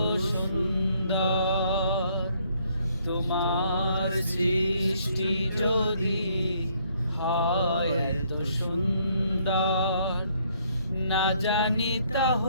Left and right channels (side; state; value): both; inverted; correlation -0.68